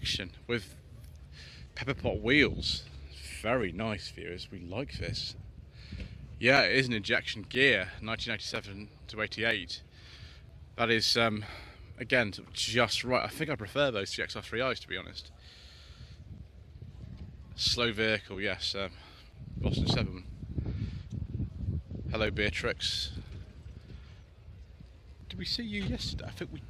with pepper pot wheels. Very nice, viewers. We like this. Yeah, it is an injection gear, 1987 to 88. That is again just right. I think I prefer those to the XR3Is, to be honest. Slow vehicle, yes. Boston 7. Hello, Beatrix. Did we see you yesterday? I think we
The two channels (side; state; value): both; identical; correlation 1.00